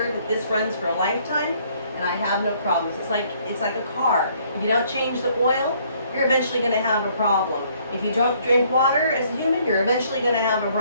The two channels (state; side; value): inverted; both; correlation -0.64